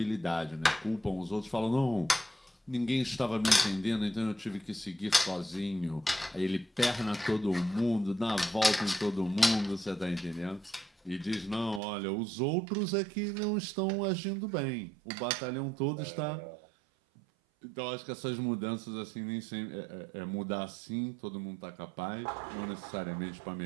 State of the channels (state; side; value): drops out; left; at 11.8 s